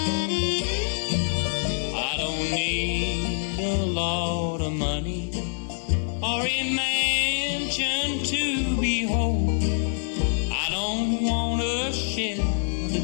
I don't need a lot of money or a mansion to behold. I don't want a ship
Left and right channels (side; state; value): right; silent; 61 dB below the other